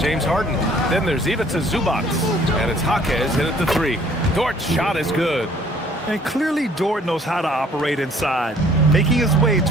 Harden. Then there's Ivica Zubac, and it's Jaquez in at the three. Dort's shot is good. And clearly Dort knows how to operate inside, making his way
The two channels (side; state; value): both; normal; correlation 0.58